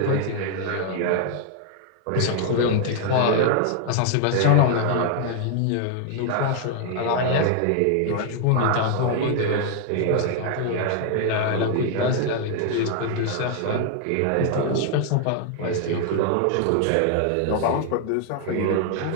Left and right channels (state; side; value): different; both; correlation 0.00